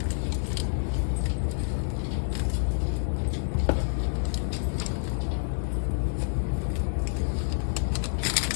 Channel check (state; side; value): silent; right; digital silence